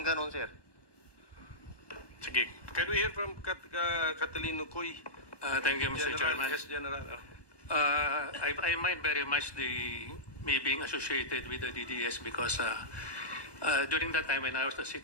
ganon, sir. Sige, can we hear from Catalino Coy? Thank you, Mr. Chairman. Yes, General. I mind very much me being associated with the DDS because during that time when I was the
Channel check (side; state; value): right; late; 1.2 ms